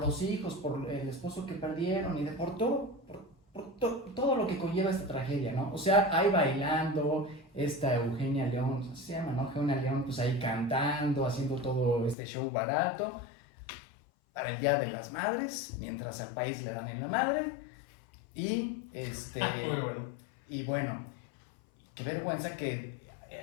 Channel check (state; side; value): drops out; right; at 12.2 s